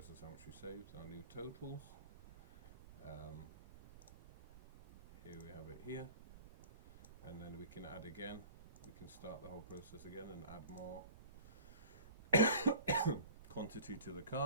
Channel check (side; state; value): both; inverted; correlation -0.44